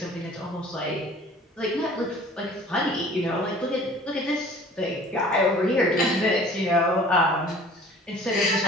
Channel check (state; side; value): normal; both; correlation 0.48